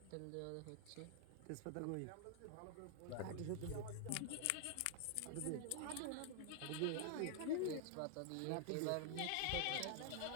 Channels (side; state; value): both; different; correlation 0.00